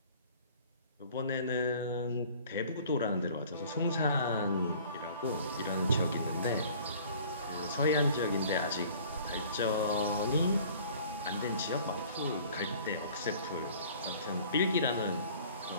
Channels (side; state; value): both; inverted; correlation -0.50